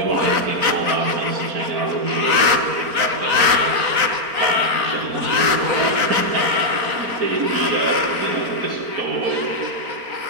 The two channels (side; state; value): left; late; 4.3 ms